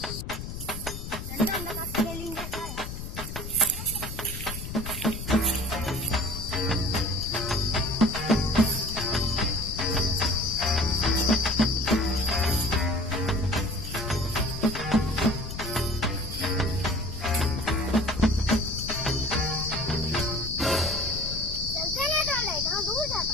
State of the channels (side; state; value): left; noise; rumble, 8 dB below the sound